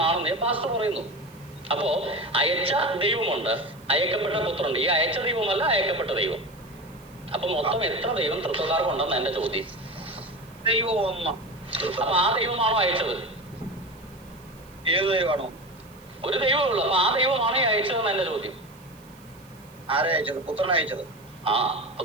പാസ്റ്റർ പറയുന്നു. അപ്പോ അയച്ച ദൈവമുണ്ട്, അയക്കപ്പെട്ട പുത്രനുണ്ട്. ഈ അയച്ച ദൈവമല്ല അയക്കപ്പെട്ട ദൈവം. അപ്പൊ മൊത്തം എത്ര ദൈവം തൃത്വക്കാർക്കുണ്ടെന്ന് എന്റെ ചോദ്യം. അപ്പൊ ആ ദൈവമാണോ അയച്ചത്? ഏത് ദൈവമാണോ? ഒരു ദൈവമേ ഉള്ളൂ. അപ്പൊ ആ ദൈവമാണോ ഈ അയച്ചതെന്ന് എന്റെ ചോദ്യം. ആരെ അയച്ചത്? പുത്രൻ അയച്ചത്. ആ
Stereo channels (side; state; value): right; noise; hiss, 27 dB below the sound